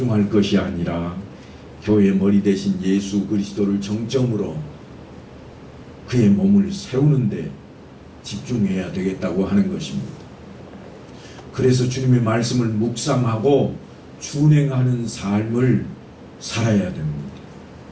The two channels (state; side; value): identical; both; correlation 1.00